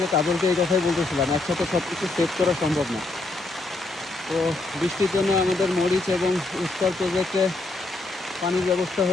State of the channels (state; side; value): quieter; right; 3.0 dB